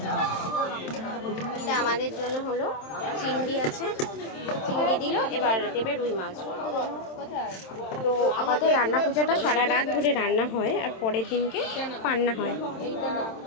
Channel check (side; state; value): right; late; 27 ms